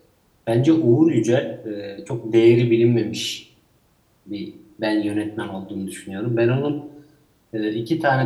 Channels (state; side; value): identical; both; correlation 1.00